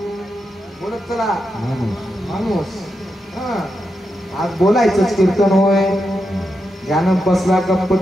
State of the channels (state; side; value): normal; both; correlation 0.86